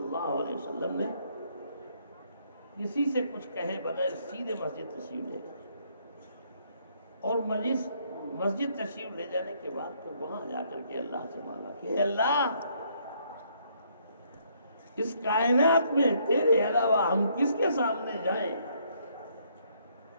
علیہ وسلم نے کسی سے کچھ کہے بغیر سیدھے مسجد تشریف لے گئے، اور مسجد تشریف لے جانے کے بعد تو وہاں جا کر کے اللہ سے مانگا کہ اللہ، اس کائنات میں تیرے علاوہ ہم کس کے سامنے جائیں؟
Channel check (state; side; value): inverted; both; correlation -0.68